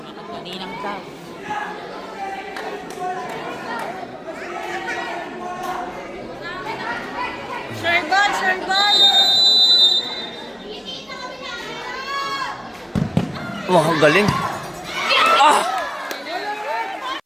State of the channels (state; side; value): identical; both; correlation 1.00